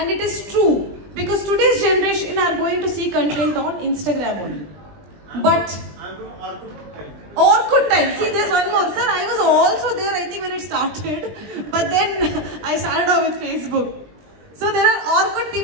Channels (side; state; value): left; late; 20 ms